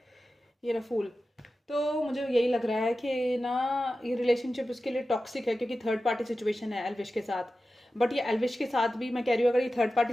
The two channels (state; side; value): normal; both; correlation 0.94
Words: ये रहा फूल। तो मुझे यही लग रहा है कि ना ये रिलेशनशिप उसके लिए टॉक्सिक है क्योंकि थर्ड पार्टी सिचुएशन है एल्विश के साथ। बट ये एल्विश के साथ भी मैं कह रही हूँ, अगर ये थर्ड